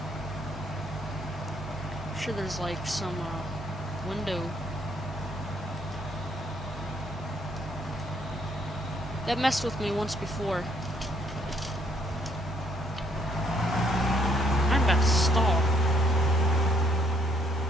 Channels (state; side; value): normal; both; correlation 0.68